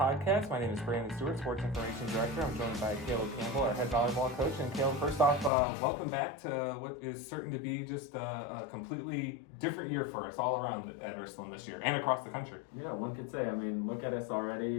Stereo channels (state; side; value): drops out; right; at 5.5 s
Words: My name is Brandon Stewart, Sports Information Director. I'm joined by Campbell, our head volleyball coach. And Caleb, first off, welcome back to what is certain to be just a completely different year for us all around at Ursuline this year and across the country. Yeah, one could say. I mean, look at us